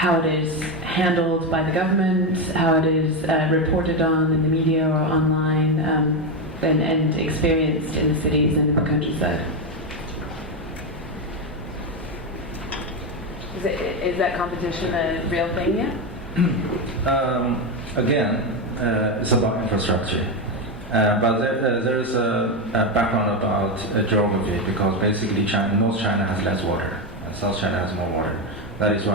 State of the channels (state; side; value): normal; both; correlation 0.10